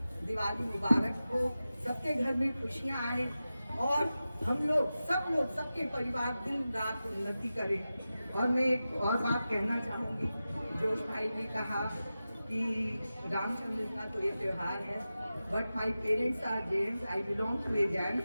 दिवाली मुबारक हो, सबके घर में खुशियाँ आए और हम लोग सबके परिवार दिन रात उन्नति करें। और मैं एक और बात कहना चाहूँगी, जोश भाई ने कहा कि रामचंद्र का तो ये त्योहार है, but my parents are Jains, I belong to a Jain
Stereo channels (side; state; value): both; inverted; correlation -0.94